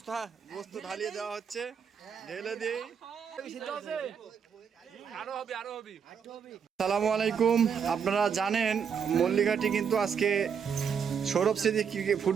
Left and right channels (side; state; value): left; quieter; 7.0 dB